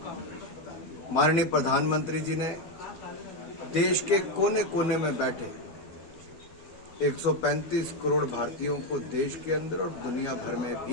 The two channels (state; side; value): late; right; 12 ms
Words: माननीय प्रधानमंत्री जी ने देश के कोने कोने में बैठे 135 करोड़ भारतीयों को देश के अंदर और दुनिया भर में